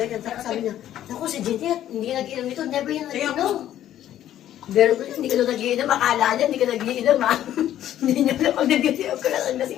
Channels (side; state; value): right; quieter; 11.9 dB